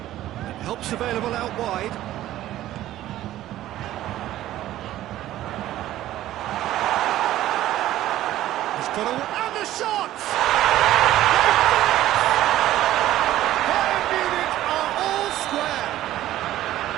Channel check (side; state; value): left; quieter; 13.9 dB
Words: And help's available out wide. And the shot! Bayern Munich are all square.